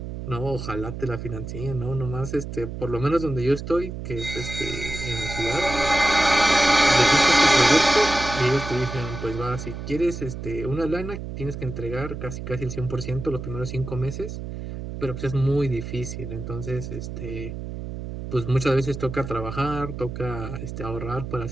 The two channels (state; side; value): noise; right; hum, 8 dB below the sound